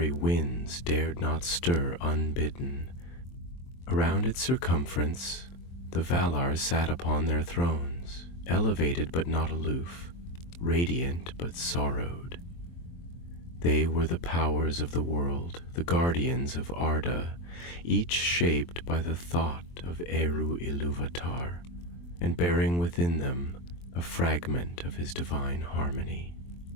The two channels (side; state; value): right; late; 23 ms